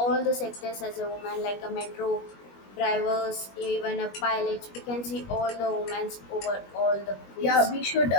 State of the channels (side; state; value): right; late; 21 ms